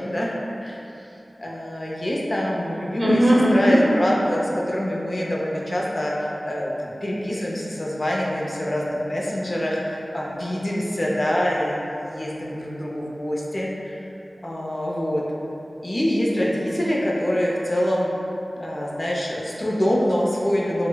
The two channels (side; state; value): both; normal; correlation 0.97